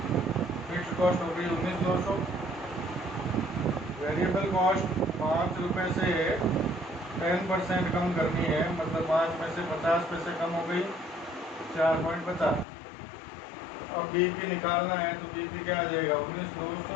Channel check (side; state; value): right; drops out; at 12.7 s